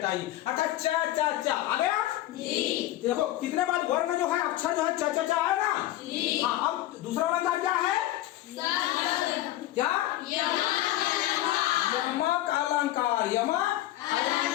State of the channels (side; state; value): right; quieter; 15.0 dB